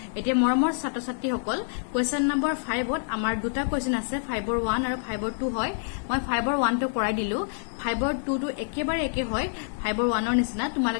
এতিয়া মৰমৰ ছাত্ৰ ছাত্ৰী সকল কোৱেশ্চন নম্বৰ 5 ত আমাৰ দুটা কোৱেশ্চন আছে 5 ৰ 1 আৰু 5 ৰ 2 হয়। মই 5 ৰ 1 টো কৰাই দিলো 5 ৰ 2 টো একেবাৰে একে হয় 5 ৰ 1 ৰ নিচিনা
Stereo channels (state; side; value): silent; right; 58 dB below the other